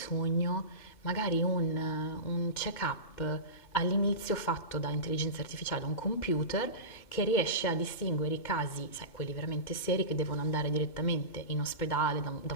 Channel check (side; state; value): right; late; 2.1 ms